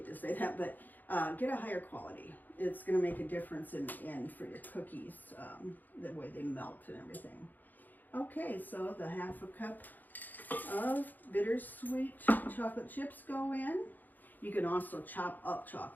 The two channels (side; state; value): right; late; 0.085 ms